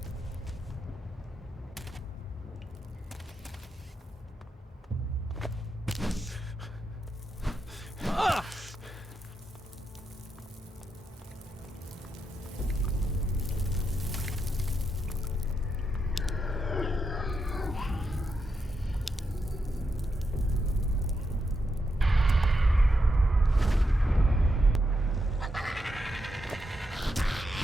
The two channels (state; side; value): normal; both; correlation 0.84